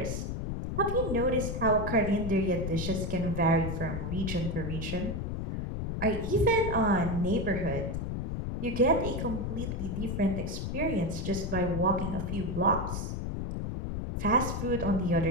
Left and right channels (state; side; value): noise; left; rumble, 3 dB below the sound